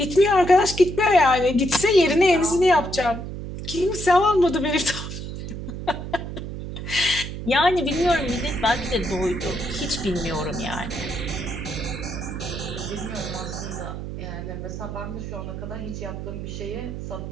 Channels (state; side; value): noise; right; hum, 7 dB below the sound